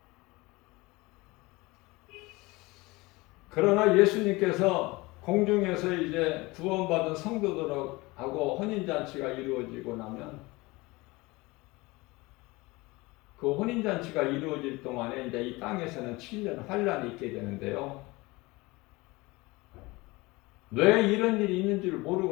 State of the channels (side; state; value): right; quieter; 22.7 dB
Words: 그러나 예수님께서 공중에서 이제 구원받은 성도들하고 혼인잔치가 이루어지고 나면, 그 혼인잔치가 이루어질 동안에 이제 이 땅에서는 7년 환란이 있게 되는데요. 왜 이런 일이 있는 줄